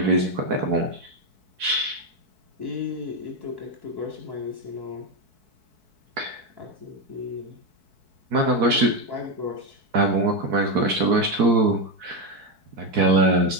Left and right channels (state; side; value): late; left; 4.6 ms